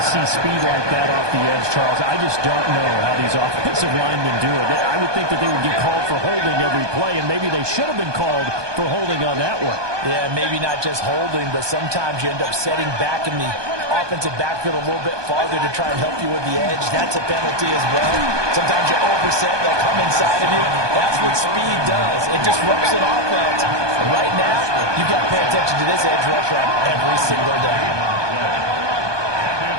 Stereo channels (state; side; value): late; left; 1.2 ms